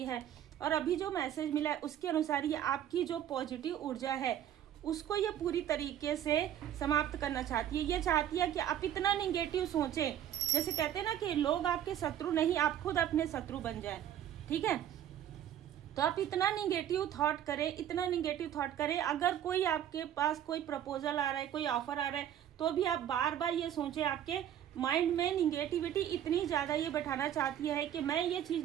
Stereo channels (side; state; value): left; quieter; 10.6 dB